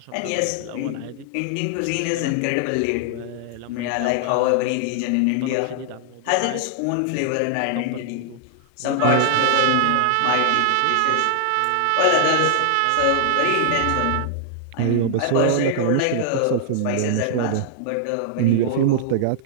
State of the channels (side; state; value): both; different; correlation -0.01